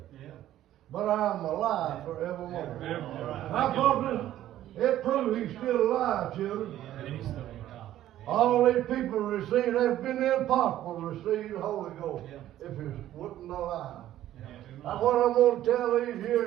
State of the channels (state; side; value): quieter; left; 12.9 dB